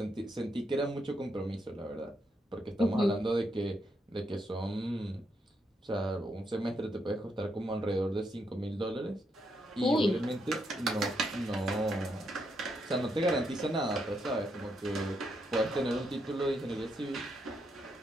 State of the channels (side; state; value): both; normal; correlation 0.79